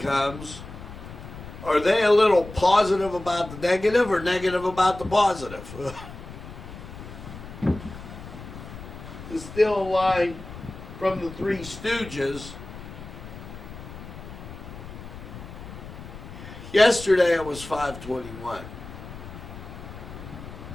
are they a little positive about the negative or negative about the positive? It's still a line from the Three Stooges. Yesterday it was 521.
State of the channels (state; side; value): noise; left; rumble, 13 dB below the sound